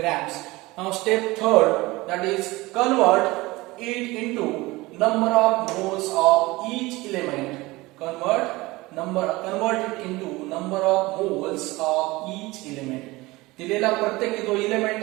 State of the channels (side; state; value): left; quieter; 21.1 dB